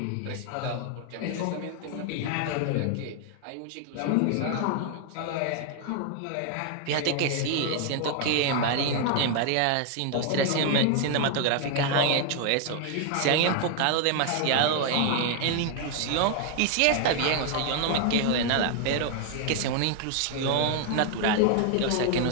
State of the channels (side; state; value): both; different; correlation 0.00